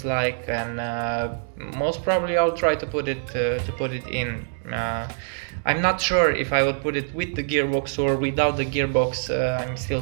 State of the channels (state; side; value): silent; left; 62 dB below the other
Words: like, and most probably I'll try to put it in. I'm not sure if I would put it with the gearbox or without the gearbox. I'm still